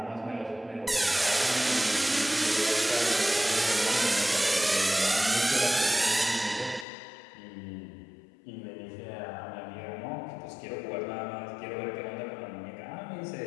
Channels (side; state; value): right; drops out; at 6.9 s